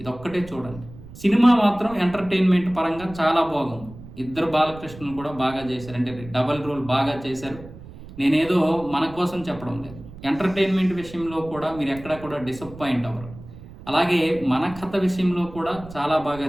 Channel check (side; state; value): right; noise; rumble, 17 dB below the sound